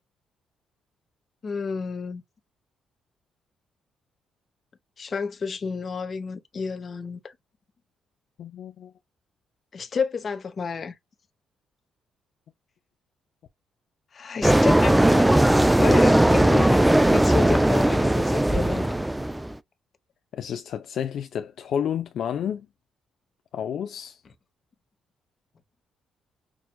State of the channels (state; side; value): normal; both; correlation 0.96